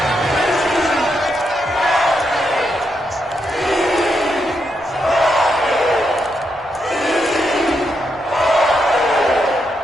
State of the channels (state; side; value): normal; both; correlation 0.81